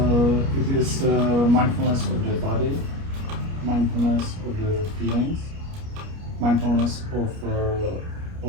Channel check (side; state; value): left; late; 29 ms